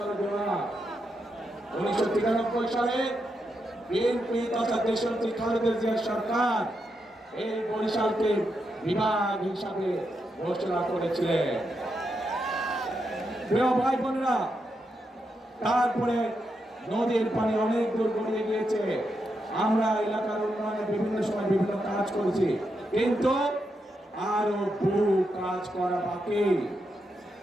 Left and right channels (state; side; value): normal; both; correlation 0.84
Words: জেলা 1993 সালে বিএনপি তথা দেশনেত্রী খালেদা জিয়ার সরকার এই বরিশালকে বিভাগ হিসাবে ঘোষণা করেছিলেন। প্রিয় ভাই বোনেরা, তারপরে নদীর পানি অনেক দূর গড়িয়ে গিয়েছে। আমরা এলাকার উন্নয়নে বিভিন্ন সময় বিভিন্ন কাজ করেছি, কিন্তু আরো বহু কাজ করা বাকি।